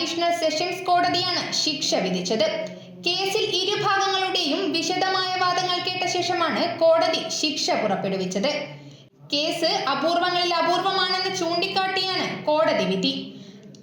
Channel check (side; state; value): both; identical; correlation 1.00